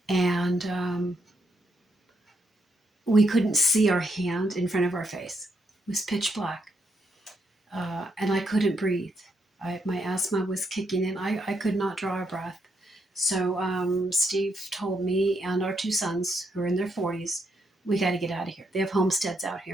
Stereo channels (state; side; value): normal; both; correlation 0.77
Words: and we couldn't see our hand in front of our face. It was pitch black. And I couldn't breathe. My asthma was kicking in. I could not draw a breath. So Steve told me and our 2 sons, who are in their 40s, we got to get out of here. They have homesteads out